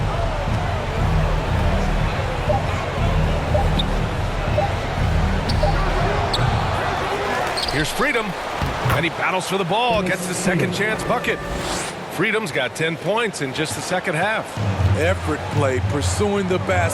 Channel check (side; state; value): both; identical; correlation 1.00